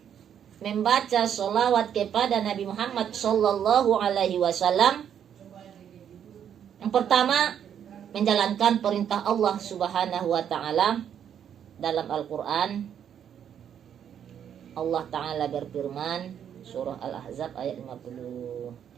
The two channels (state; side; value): quieter; left; 9.0 dB